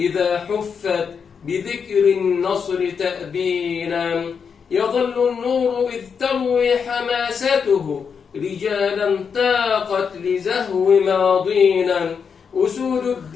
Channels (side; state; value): right; quieter; 6.4 dB